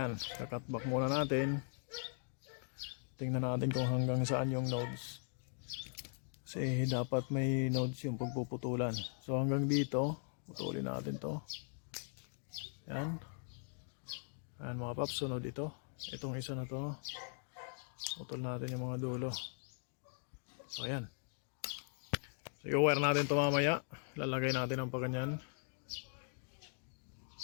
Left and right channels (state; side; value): silent; right; 51 dB below the other